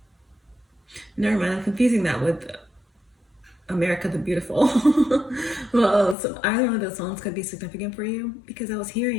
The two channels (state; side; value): drops out; right; at 6.2 s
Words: Never mind, I'm confusing that with America the Beautiful. Well, so either one of those songs could be significant for you, because I was